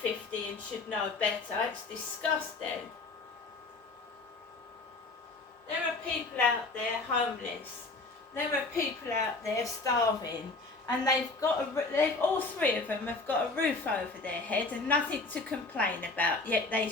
and should know better. It's disgusting. There are people out there homeless. There are people out there starving, and all three of them have got a roof over their head and nothing to complain about. Yet they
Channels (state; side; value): quieter; right; 3.5 dB